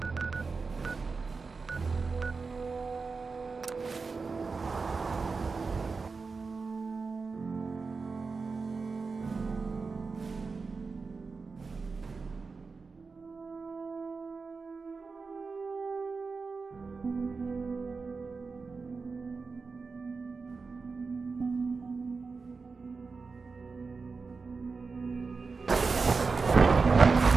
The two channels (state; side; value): quieter; left; 4.5 dB